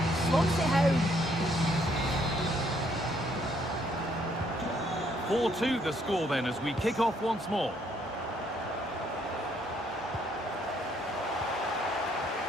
slots it home. 4-2 the score then as we kick off once more.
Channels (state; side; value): normal; both; correlation 0.68